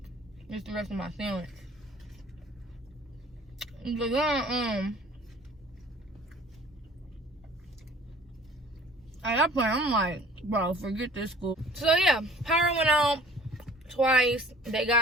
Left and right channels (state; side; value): normal; both; correlation 0.50